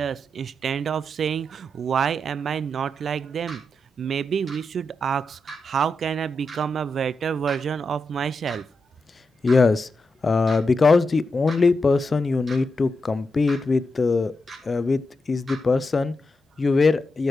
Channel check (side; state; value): both; normal; correlation 0.86